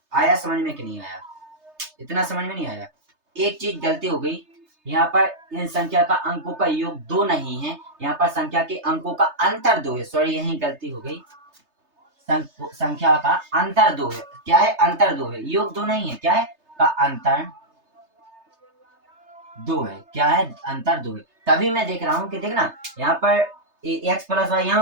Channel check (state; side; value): late; left; 3.3 ms